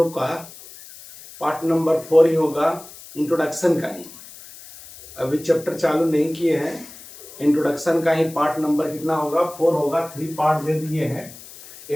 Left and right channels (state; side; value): noise; left; hiss, 18 dB below the sound